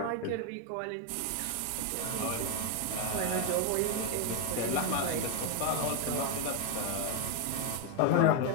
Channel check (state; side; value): different; both; correlation 0.01